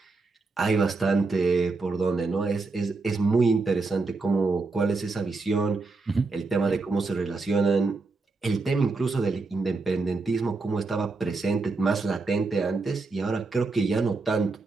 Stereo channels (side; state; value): left; quieter; 3.8 dB